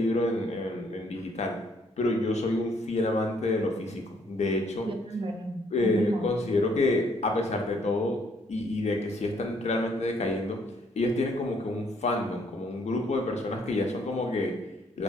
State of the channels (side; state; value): both; normal; correlation 0.67